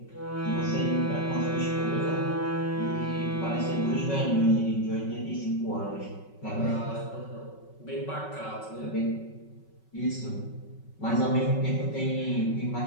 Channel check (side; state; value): right; late; 5.3 ms